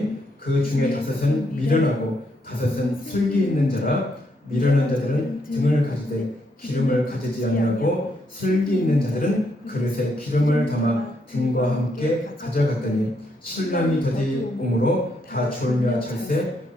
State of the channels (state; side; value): normal; both; correlation 0.76